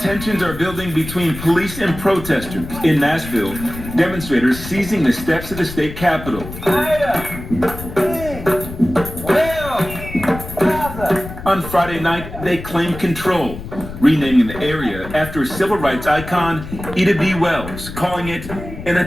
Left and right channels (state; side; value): noise; left; rumble, 11 dB below the sound